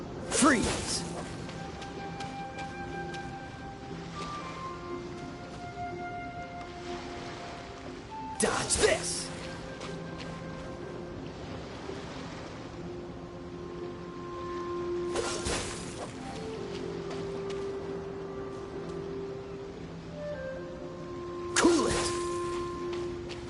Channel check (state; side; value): identical; both; correlation 1.00